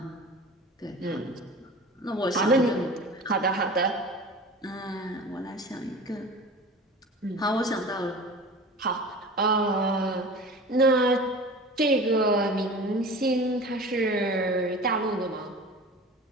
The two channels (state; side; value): normal; both; correlation 0.37